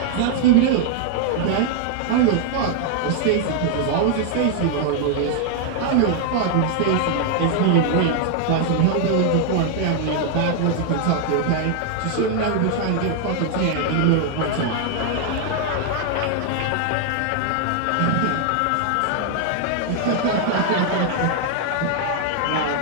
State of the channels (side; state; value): both; different; correlation 0.00